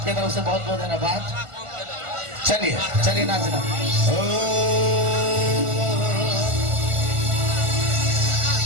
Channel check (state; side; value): late; left; 1.4 ms